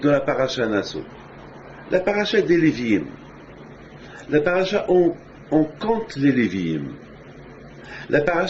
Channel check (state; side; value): identical; both; correlation 1.00